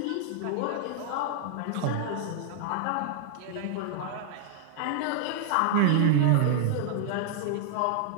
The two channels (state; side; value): different; both; correlation 0.00